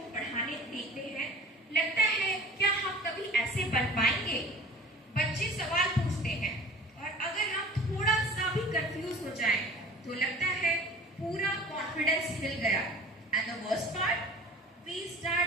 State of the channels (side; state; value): both; normal; correlation 0.43